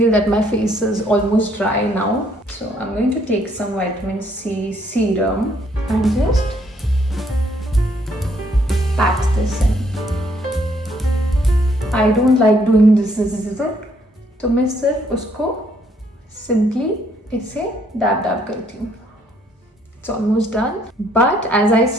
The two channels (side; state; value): both; normal; correlation 0.68